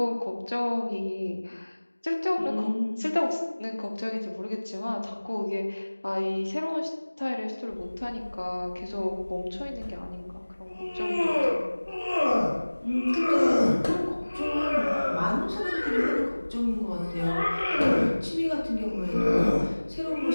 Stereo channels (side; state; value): both; inverted; correlation -1.00